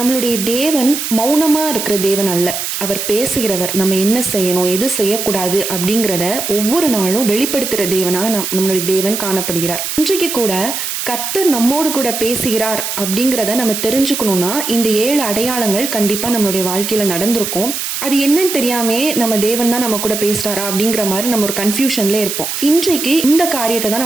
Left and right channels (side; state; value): right; noise; hiss, 4 dB below the sound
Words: தேவன் மௌனமா இருக்கிற தேவன் அல்ல. அவர் பேசுகிறவர். நம்ம என்ன செய்யணும், எது செய்யக்கூடாது அப்படிங்கிறத ஒவ்வொரு நாளும் வெளிப்படுத்துற தேவனா நம்மளுடைய தேவன் காணப்படுகிறார். இன்றைக்கு கூட கர்த்தர் நம்மோடு கூட பேசுகிறார் அப்படிங்கிறத நம்ம தெரிஞ்சுக்கணும்னா இந்த 7 அடையாளங்கள் கண்டிப்பா நம்மளுடைய வாழ்க்கையில நடந்திருக்கும். அது என்னன்னு தெரியாமே நம்ம தேவன் தான் நம்ம கூட பேசுறாரா அப்படிங்கிற மாதிரி நம்ம ஒரு கன்ஃபியூஷன்ல இருப்போம். இன்றைக்கு இந்த காரியத்தை தான்